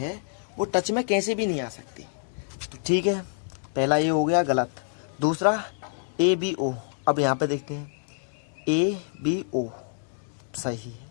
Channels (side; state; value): right; silent; digital silence